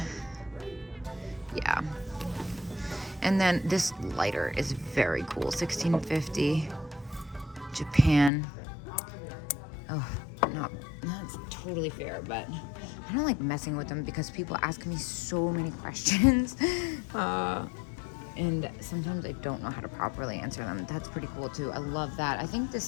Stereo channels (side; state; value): right; drops out; at 8.3 s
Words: Yeah. And then this lighter is very cool. $16.50. Japan. Oh, that's totally fair, but kind of like messing with them because people ask me so many questions. And sometimes I don't know how to properly answer them. That's pretty cool too. I love that. I think